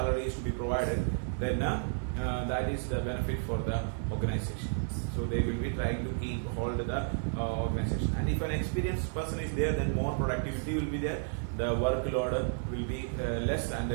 is to be provided, then that is the benefit for the organization. So they will be trying to keep hold the organization. And if an experienced person is there, then more productivity will be there. The workload will be less, and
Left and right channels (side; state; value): left; silent; digital silence